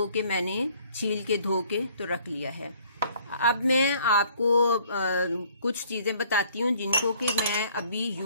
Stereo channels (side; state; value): both; inverted; correlation -0.59